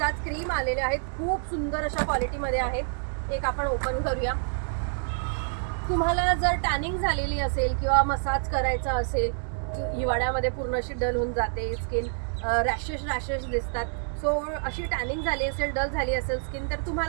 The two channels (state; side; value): silent; left; digital silence